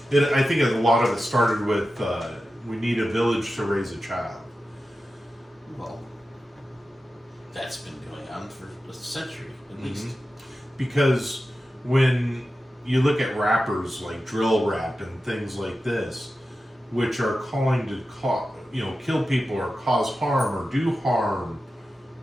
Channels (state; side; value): normal; both; correlation 0.93